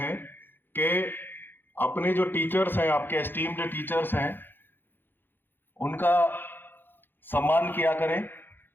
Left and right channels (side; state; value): right; late; 0.098 ms